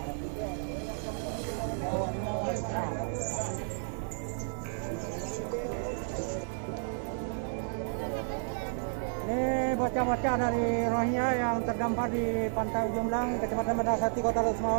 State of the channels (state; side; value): silent; left; digital silence